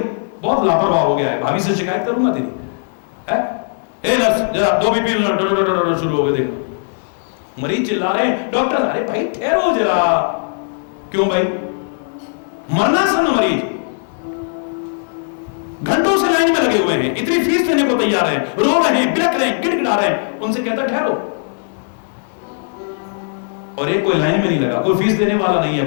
बहुत लापरवाह हो गया है, भाभी से शिकायत करूंगा तेरी। है ए नर्स, जरा दो बीपी शुरू हो गए, देखना। मरीज चिल्ला रहे हैं, डॉक्टर अरे भाई ठहरो जरा। क्यों भाई? मरनासन्न मरीज घंटों से लाइन में लगे हुए हैं, इतनी फीस देने को तैयार हैं, रो रहे हैं, बिलख रहे हैं, गिड़गिड़ा रहे हैं, उनसे कहता ठहरो। और एक कोई लाइन में नहीं लगा, कोई फीस देने वाला नहीं है,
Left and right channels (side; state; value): right; silent; digital silence